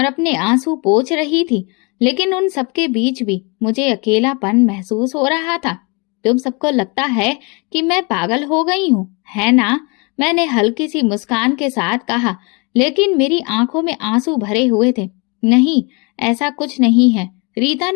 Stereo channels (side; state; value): right; quieter; 30.4 dB